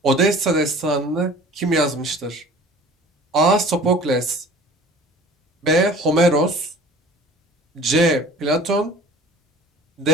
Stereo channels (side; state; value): both; normal; correlation 0.46